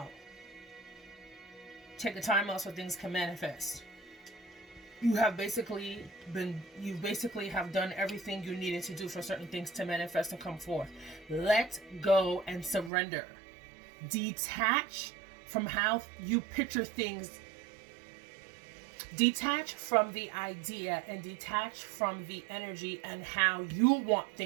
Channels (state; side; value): drops out; left; at 12.9 s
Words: Take a time out so things can manifest. You basically have done everything you needed to do for certain things to manifest and come forth. Let go and surrender. Detach from how you picture things. Detach from the idea and detach from the energy and how you want